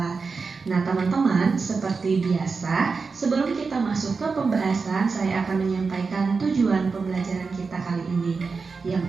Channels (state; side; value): quieter; left; 4.7 dB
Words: Nah teman-teman, seperti biasa, sebelum kita masuk ke pembahasan, saya akan menyampaikan tujuan pembelajaran kita kali ini.